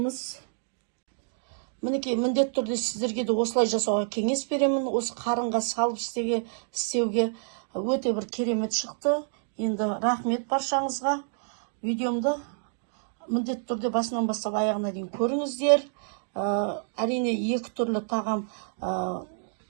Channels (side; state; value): left; silent; digital silence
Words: Мінекей міндетті түрде сіздерге де осылай жасауға кеңес беремін. Осы қарынға салып істеуге өте бір керемет шықты. Енді рахмет баршаңызға. Видеомды міндетті түрде басынан бастап аяғына дейін көріңіздер. Әрине екі түрлі тағам